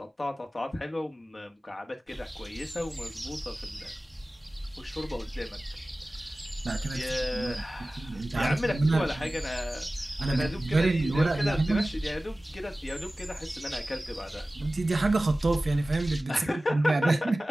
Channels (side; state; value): both; normal; correlation 0.97